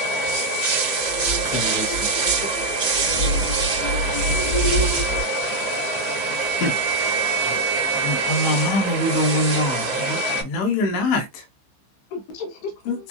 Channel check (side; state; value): right; late; 14 ms